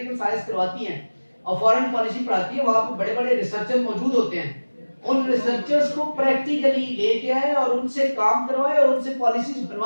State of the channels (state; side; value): inverted; both; correlation -1.00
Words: साइंस करवाती हैं और फॉरेन पॉलिसी पढ़ाती है, वहां पे बड़े बड़े रिसर्चर मौजूद होते हैं. उन रिसर्चर्स को प्रैक्टिकली लेके आए और उनसे काम करवाए और उनसे पॉलिसीज